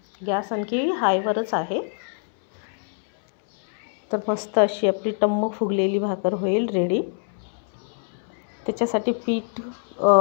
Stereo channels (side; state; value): right; silent; 62 dB below the other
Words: गॅस आणखी हायवरच आहे. तर मस्त अशी आपली टम्म फुगलेली भाकर होईल रेडी. त्याच्यासाठी पीठ